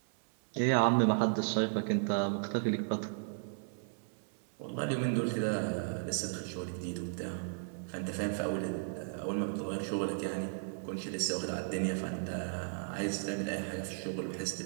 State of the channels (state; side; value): silent; left; digital silence